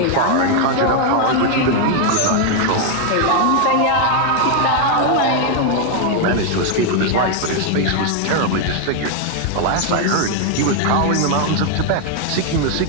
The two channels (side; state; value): both; different; correlation 0.01